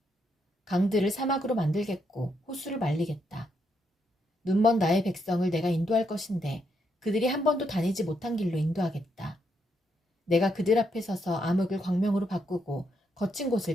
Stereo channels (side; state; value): both; normal; correlation 0.78